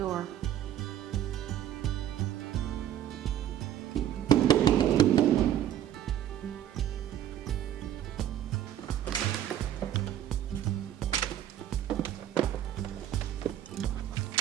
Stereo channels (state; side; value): quieter; left; 11.2 dB